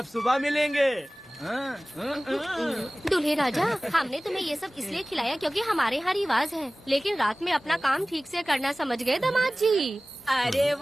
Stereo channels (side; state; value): both; normal; correlation 0.98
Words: सुबह मिलेंगे। दूल्हे राजा हमने तुम्हें ये सब इसलिए खिलाया क्योंकि हमारे यहाँ रिवाज है, लेकिन रात में अपना काम ठीक से करना समझ गए दामाद जी। अरे